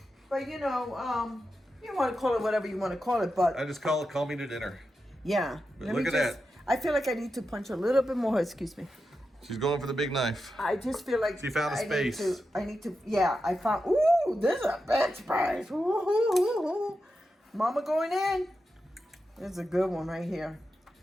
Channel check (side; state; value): both; normal; correlation 0.89